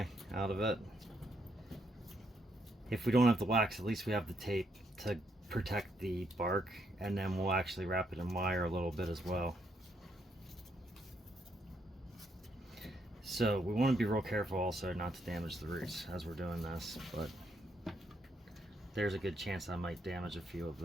out of it. If we don't have the wax, at least we have the tape to protect the bark, and then we'll actually wrap it in wire a little bit as well. So we want to be real careful also not to damage the roots as we're doing this, but there's a good chance I might damage a few of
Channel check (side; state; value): both; normal; correlation 0.76